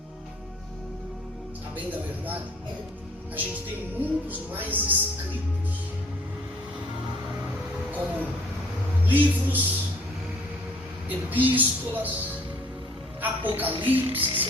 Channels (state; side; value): normal; both; correlation 0.57